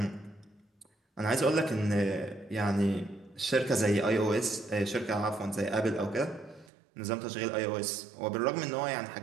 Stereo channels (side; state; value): left; drops out; at 6.7 s